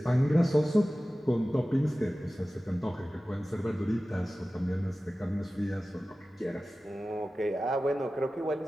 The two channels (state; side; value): normal; both; correlation 0.96